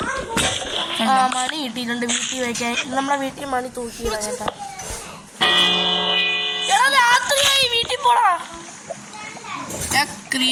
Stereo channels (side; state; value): both; identical; correlation 1.00